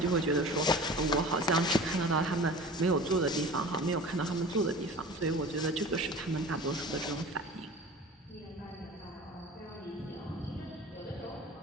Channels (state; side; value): normal; both; correlation 0.39